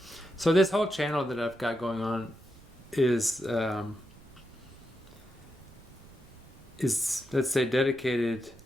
So this whole channel that I've got going on is let's say dedicated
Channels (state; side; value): noise; right; rumble, 22 dB below the sound